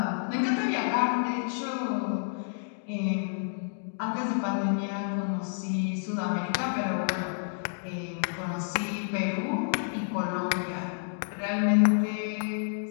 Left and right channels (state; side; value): silent; right; digital silence